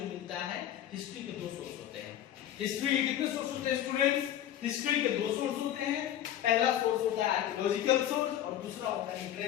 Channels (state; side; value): quieter; right; 11.4 dB